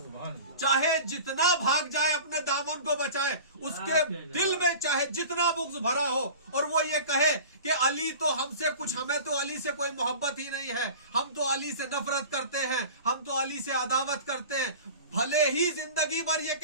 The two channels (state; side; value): inverted; both; correlation -0.38